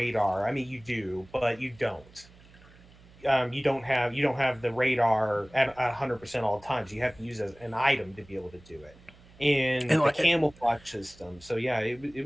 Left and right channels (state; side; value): noise; right; hum, 24 dB below the sound